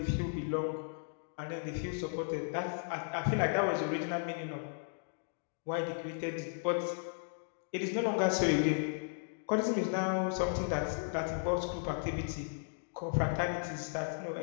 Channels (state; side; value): silent; right; digital silence